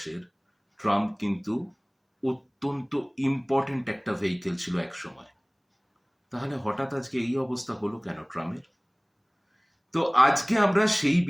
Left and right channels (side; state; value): both; identical; correlation 1.00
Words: ট্রাম কিন্তু অত্যন্ত ইম্পর্টেন্ট একটা ভেহিকেল ছিল এক সময়। তাহলে হঠাৎ আজকে এই অবস্থা হলো কেন ট্রামের? তো আজকে আমরা সেই